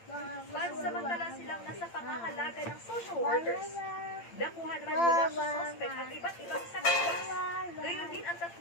Pansamantala silang nasa pangangalaga ng social workers. Nakuha naman mula sa suspect ang iba't ibang sakitas. Gayon din ang 3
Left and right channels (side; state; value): right; late; 8.8 ms